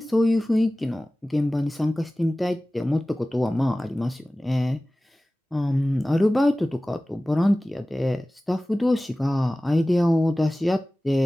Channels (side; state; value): both; normal; correlation 0.97